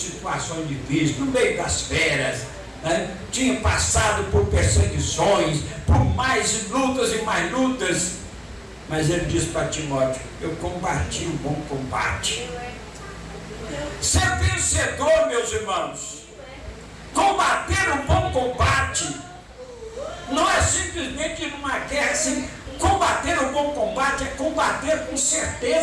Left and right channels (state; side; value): identical; both; correlation 1.00